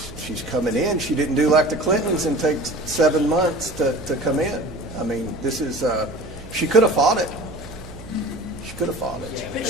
she's coming in. She didn't do like the Clintons and take 7 months to come in. I mean, this is, she could have fought it. She could have fought it. But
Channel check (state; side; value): noise; right; hum, 16 dB below the sound